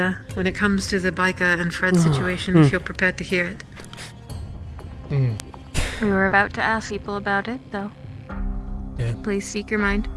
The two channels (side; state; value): both; identical; correlation 1.00